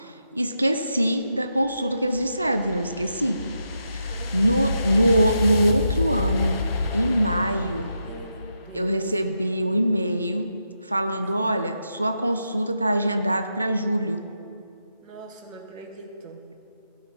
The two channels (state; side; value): inverted; both; correlation -0.84